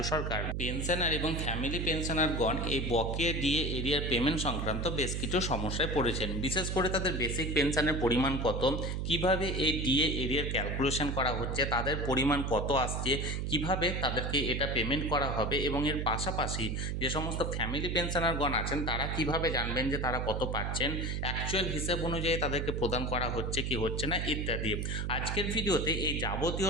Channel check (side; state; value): right; noise; hum, 1 dB below the sound